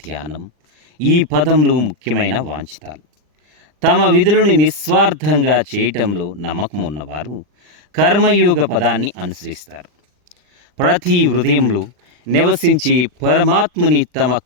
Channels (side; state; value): left; late; 40 ms